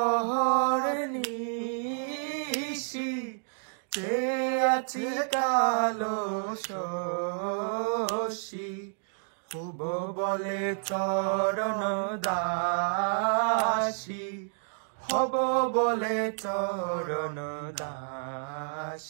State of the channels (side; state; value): left; silent; digital silence